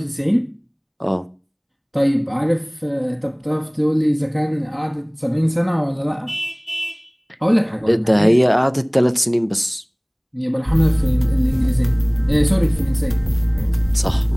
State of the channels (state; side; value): identical; both; correlation 1.00